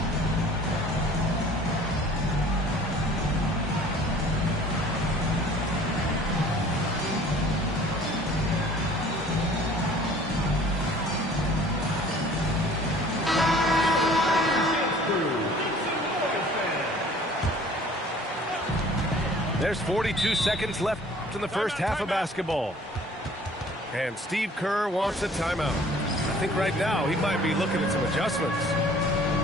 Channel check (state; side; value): normal; both; correlation 0.51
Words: There's 42 seconds left in the first half of basketball. And Steve Kerr wants a timeout. I think right now he might be looking at some adjustments.